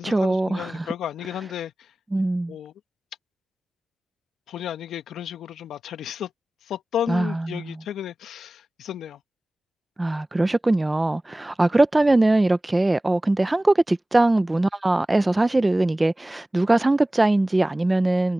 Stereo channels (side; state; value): both; normal; correlation 0.97